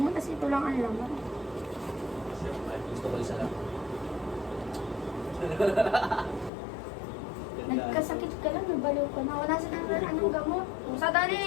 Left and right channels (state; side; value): drops out; right; at 6.5 s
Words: tapos ito lang ang laman. Siyempre, gusto ko isa lang. Nagkasakit ka lang, nabaliw ka na. Wala sa anong gamot. Sandali!